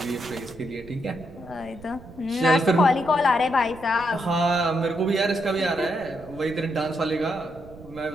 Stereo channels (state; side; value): noise; right; rumble, 18 dB below the sound